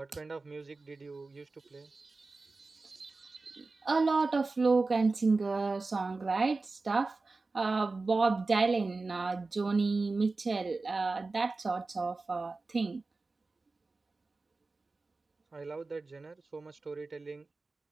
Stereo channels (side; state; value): left; quieter; 3.7 dB